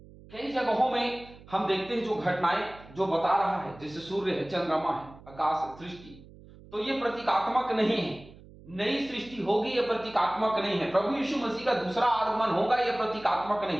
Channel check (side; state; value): right; noise; hum, 21 dB below the sound